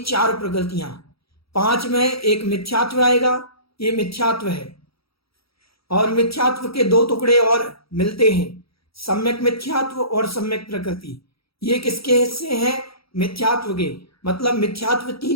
प्रकृतियां। 5 में एक मिथ्यात्व आएगा, ये मिथ्यात्व है। और मिथ्यात्व के 2 टुकड़े और मिलते हैं, सम्यक मिथ्यात्व और सम्यक प्रकृति। ये किसके हिस्से हैं? मिथ्यात्व के। मतलब मिथ्यात्व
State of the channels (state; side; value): late; right; 0.76 ms